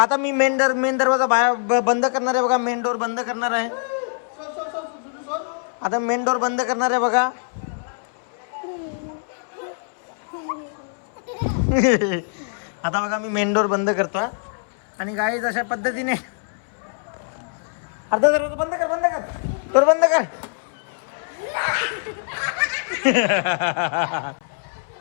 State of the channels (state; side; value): silent; right; 62 dB below the other